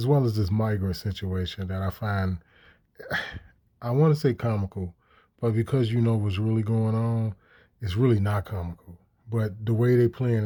well as this migrant situation that I find, I want to say comical, but because you know what's really going on, it's really not comical. But the way they playing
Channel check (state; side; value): identical; both; correlation 1.00